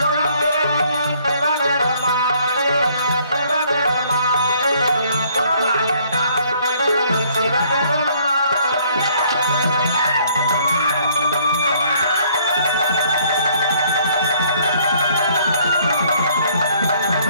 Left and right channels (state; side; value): inverted; both; correlation -0.62